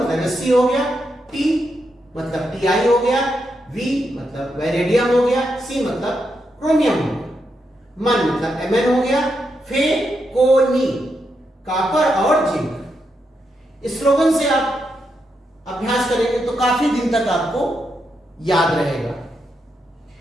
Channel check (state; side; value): normal; both; correlation 0.83